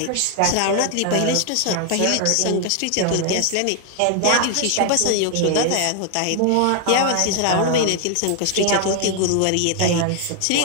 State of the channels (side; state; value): both; different; correlation 0.00